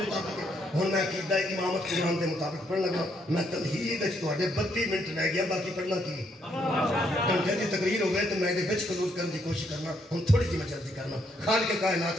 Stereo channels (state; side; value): normal; both; correlation 0.73